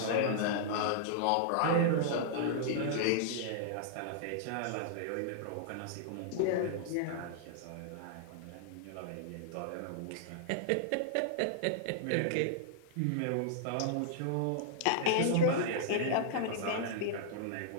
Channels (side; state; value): both; different; correlation -0.01